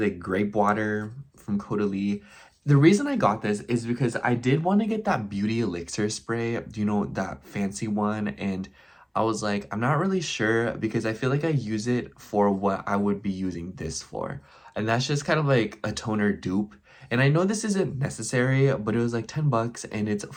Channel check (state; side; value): identical; both; correlation 1.00